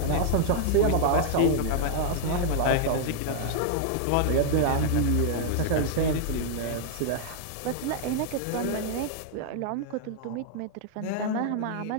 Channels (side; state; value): both; different; correlation -0.01